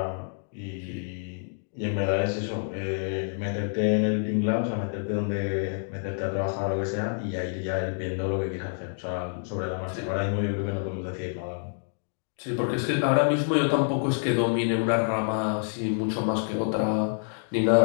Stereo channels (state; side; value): silent; right; digital silence